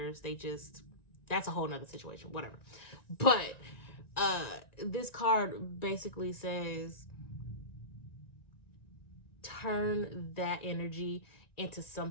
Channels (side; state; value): right; late; 1.9 ms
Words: They just, that's a whole nother situation, whatever. But this card basically says turn that energy into